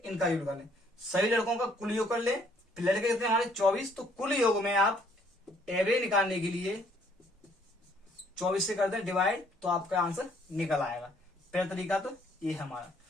इनका योग निकाल लें, सभी लड़कों का कुल योग कर लें, फिर लड़के कितने हमारे 24, तो कुल योग में आप एवरेज निकालने के लिए 24 से कर दें डिवाइड, तो आपका आंसर निकल आएगा। पहला तरीका तो ये है हमारा।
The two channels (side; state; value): both; normal; correlation 0.64